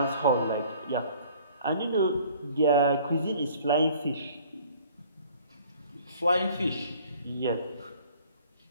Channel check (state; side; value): inverted; both; correlation -0.53